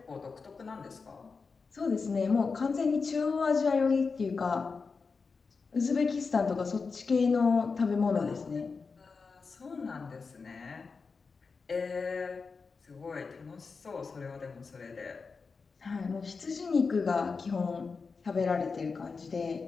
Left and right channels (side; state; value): right; quieter; 4.8 dB